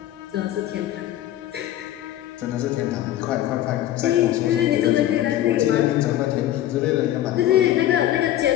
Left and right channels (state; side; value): quieter; right; 13.0 dB